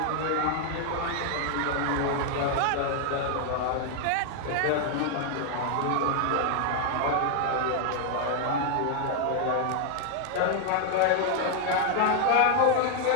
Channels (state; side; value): different; both; correlation 0.00